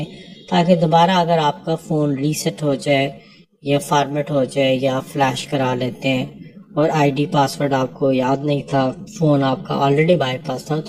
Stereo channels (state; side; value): identical; both; correlation 1.00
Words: ताकि दोबारा अगर आपका फ़ोन रीसेट हो जाए या फॉर्मेट हो जाए या फ्लैश करा लेते हैं और आईडी पासवर्ड आपको याद नहीं था, फ़ोन आपका ऑलरेडी बाईपास था,